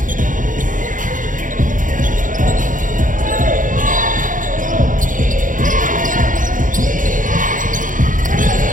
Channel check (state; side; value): late; left; 0.38 ms